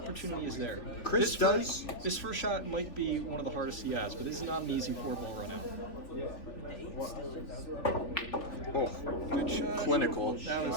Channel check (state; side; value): late; right; 3.4 ms